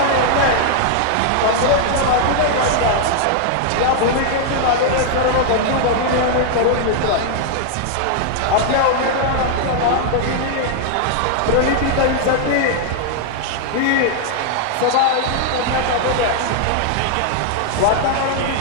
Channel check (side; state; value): both; different; correlation 0.00